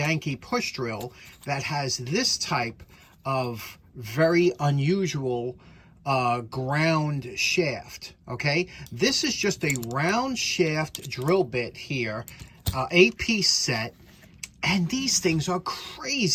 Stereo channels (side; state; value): both; identical; correlation 1.00